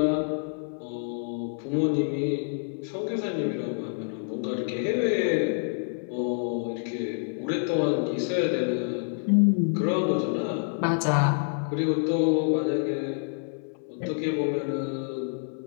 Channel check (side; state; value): right; silent; digital silence